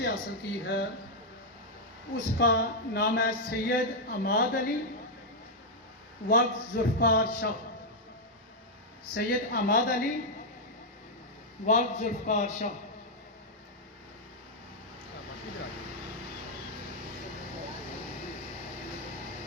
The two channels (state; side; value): normal; both; correlation -0.03